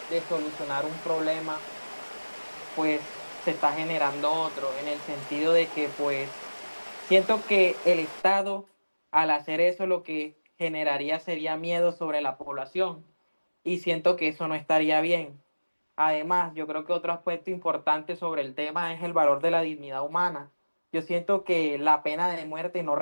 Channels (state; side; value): inverted; both; correlation -1.00